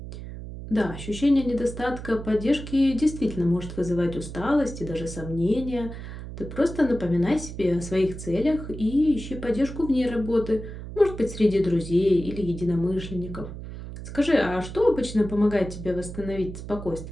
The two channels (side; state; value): right; noise; hum, 10 dB below the sound